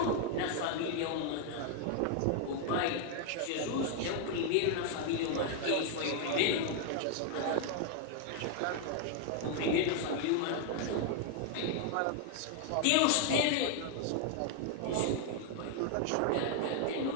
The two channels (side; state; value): both; different; correlation 0.00